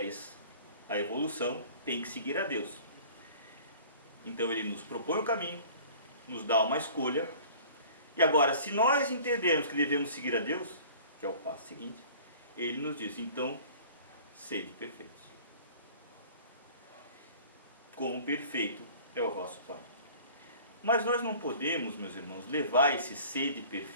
a evolução, tem que seguir a Deus. Então ele nos propõe o caminho, nos dá uma escolha. E agora, se nós entendermos que devemos seguir a Deus, que é o passo seguinte, ele nos diz, então, sede perfeitos. Como perfeito é o vosso Pai. Mas nós não podemos, meus irmãos, levar esse sede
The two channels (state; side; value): inverted; both; correlation -0.46